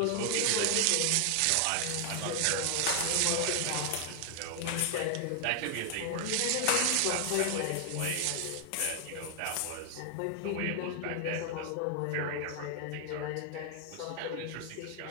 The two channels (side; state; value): both; different; correlation 0.00